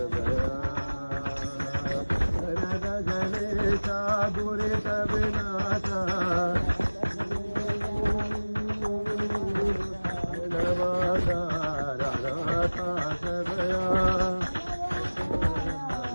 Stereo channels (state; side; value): inverted; both; correlation -1.00